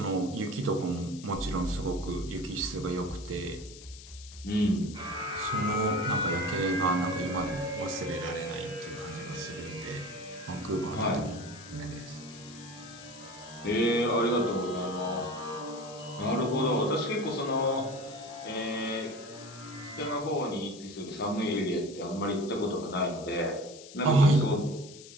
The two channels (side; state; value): left; noise; hiss, 17 dB below the sound